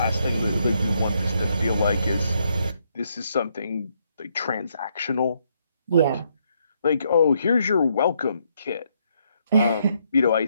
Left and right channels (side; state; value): both; inverted; correlation -0.74